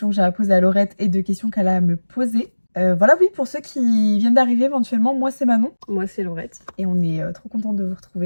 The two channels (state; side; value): inverted; both; correlation -1.00